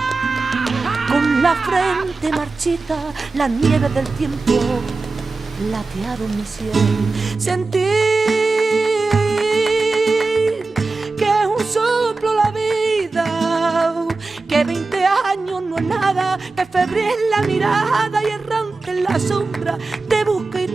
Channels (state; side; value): quieter; left; 3.7 dB